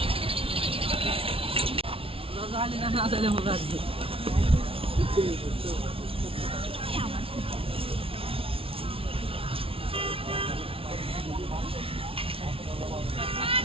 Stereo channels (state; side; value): late; left; 0.26 ms